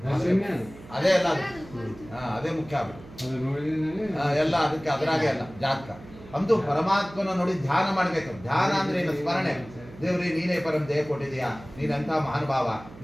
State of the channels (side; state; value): right; noise; hum, 18 dB below the sound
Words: ಅದೇ ಅಲ್ಲ, ಅದೇ ಮುಖ್ಯ ಆಗ್ಬಿಟ್ಟು ಎಲ್ಲ ಅದಕ್ಕೆ ಅದರಾಗೆ ಅಲ್ಲ ಜಾತಕ. ಅಂತೂ ಪರಮಾತ್ಮನ ನೋಡಿ ಧ್ಯಾನ ಮಾಡ್ಬೇಕು. ಧ್ಯಾನ ಅಂದ್ರೆ ಏನು? ಸ್ಮರಣೆ. ದೇವ್ರಿ ನೀನೇ ಪರಂ ದೇಹ ಕೊಟ್ಟಿದೀಯಾ, ನೀನಂತ ಮಹಾನುಭಾವ,